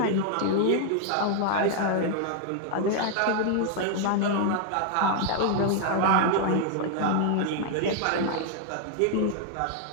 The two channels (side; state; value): both; different; correlation 0.00